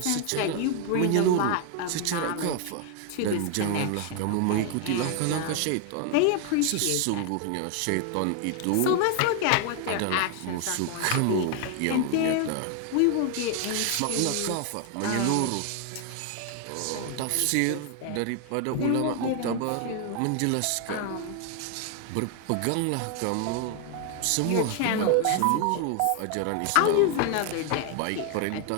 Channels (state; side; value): different; both; correlation 0.00